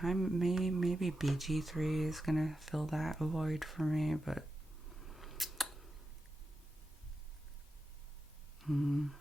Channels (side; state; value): both; normal; correlation 0.89